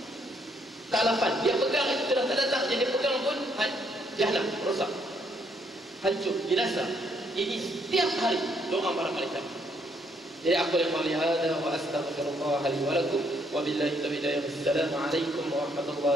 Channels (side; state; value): both; normal; correlation 0.70